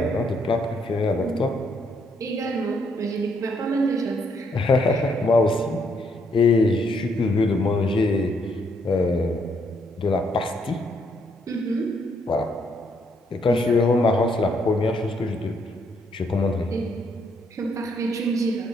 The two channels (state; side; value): normal; both; correlation 0.72